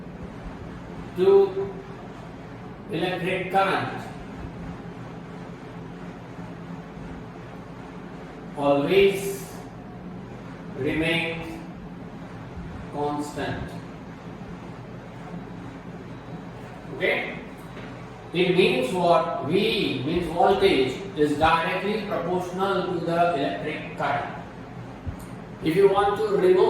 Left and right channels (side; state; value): both; identical; correlation 1.00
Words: to electric current always remains constant. Okay? It means what? V means voltage is directly proportional to the electric current. If you want to